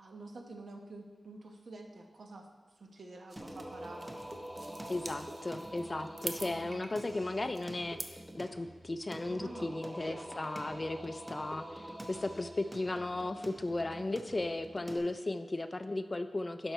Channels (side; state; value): both; normal; correlation 0.98